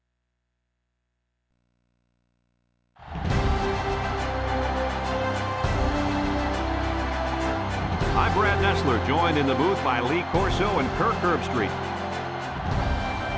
I'm Brad Nessler, joined in the booth by Lee Corso and Kirk Herbstreit.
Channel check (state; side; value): identical; both; correlation 1.00